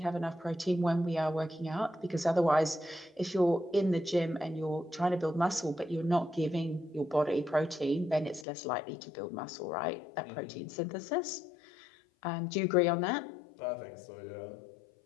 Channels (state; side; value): drops out; right; at 8.5 s